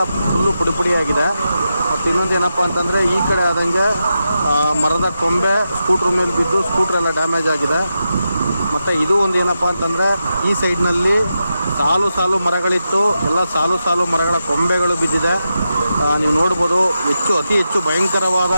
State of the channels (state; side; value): inverted; both; correlation -0.88